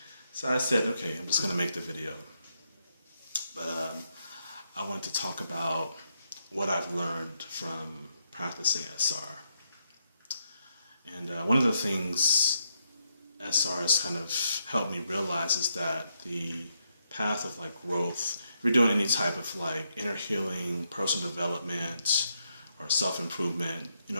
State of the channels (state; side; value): inverted; both; correlation -0.80